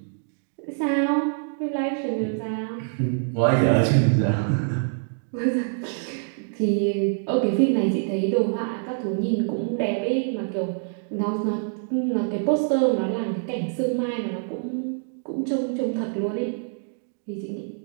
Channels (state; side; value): silent; left; digital silence